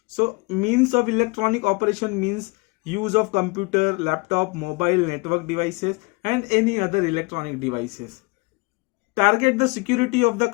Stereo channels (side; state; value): right; quieter; 27.0 dB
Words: So means of electronic operation means use of computer, laptop, mobile, network devices and any other electronic devices. Target the security of the